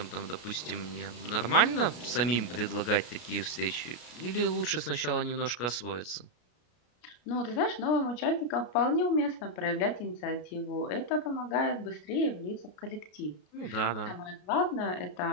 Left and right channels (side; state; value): right; late; 33 ms